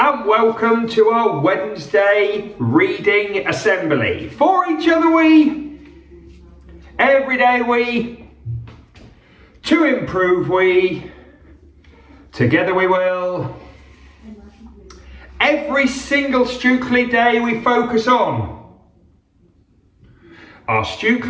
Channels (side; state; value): both; identical; correlation 1.00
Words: welcome to our Wednesday reading assembly. For each other we, every day we, to improve we, together we will. Every single Stukeley day we focus on. Our